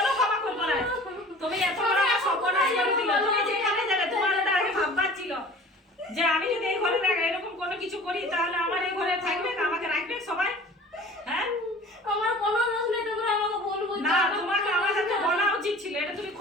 ক্ষমা করবো না। তুমি এত বড় একটা সর্বনাশ করে দিলে। তুমি যেখানে যাবে তোমার ওটা আগে ভাববার ছিল যে আমি যদি এই ঘরে এরকম কোনো কিছু করি, তাহলে আমার এই ঘরে থাকবে না, আমাকে রাখবে সবাই। হ্যাঁ, আমার কোনো দোষ নেই, তোমরা আমাকে ভুল বুঝছো। না, তোমাকে আমার সাথে বলা উচিত ছিল, এটা তুমি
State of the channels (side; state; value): both; normal; correlation 0.44